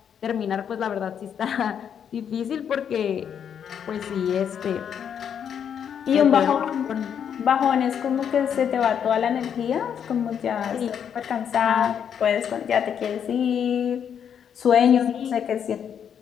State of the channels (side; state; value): right; quieter; 8.2 dB